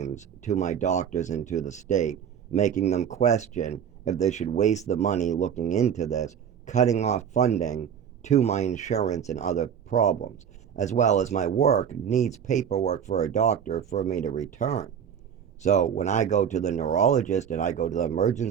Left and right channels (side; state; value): left; quieter; 8.2 dB